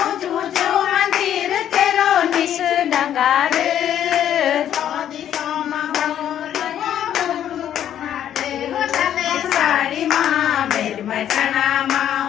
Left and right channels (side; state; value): right; quieter; 10.5 dB